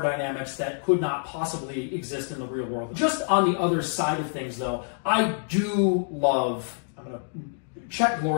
dynamics that could not possibly exist in the real world. Just on the other side of things, though, I do love... I'm going to... Check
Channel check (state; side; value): silent; right; digital silence